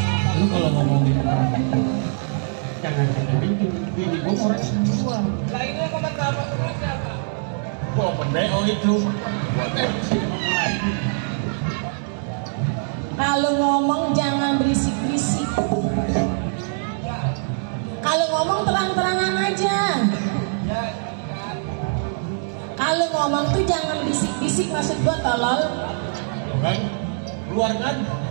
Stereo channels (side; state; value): left; silent; digital silence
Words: Lu kalau ngomongin jangan sampai bini gua orang jual. Lah ini yang komentar apa duitnya, Pak? Gua open BO itu. Kalau ngomong jangan berisik-berisik. Kalau ngomong terang-terangan aja. Kalau ngomong tuh jangan bisik-bisik, maksud gua tolol. Tuh kan? Keluar kan?